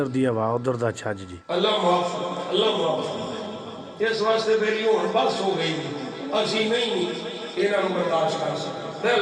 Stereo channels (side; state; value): both; identical; correlation 1.00